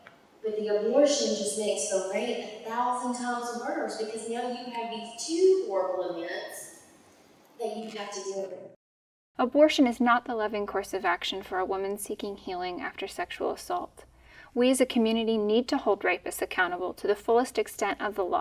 But the abortion just makes the rape 1,000 times worse, because now you have these two horrible events that you have to deal with. Abortion is not the loving course of action for a woman seeking healing after sexual assault. We as a community need to hold rapists accountable to the fullest extent of the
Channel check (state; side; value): identical; both; correlation 1.00